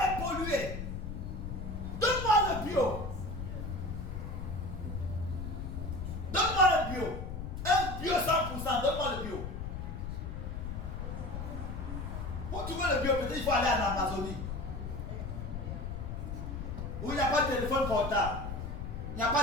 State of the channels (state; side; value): noise; left; rumble, 5 dB below the sound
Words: est polluée. Donne-moi le bio. Donne-moi un bio. Un bio 100%, donne-moi le bio. Pour trouver le bio, peut-être il faut aller en Amazonie. Où il n'y a pas de téléphone portable. Il n'y a